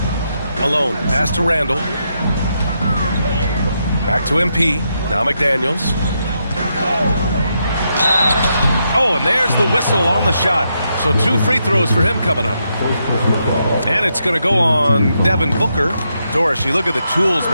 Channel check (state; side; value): inverted; both; correlation -0.81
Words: Alone, pass to Randall. Back to MP. Now McDaniels. Oh, and there's the whistle on the shot. So 2 free throws for him coming up. And it's going to go on Devin Booker. Doris, you look at the tools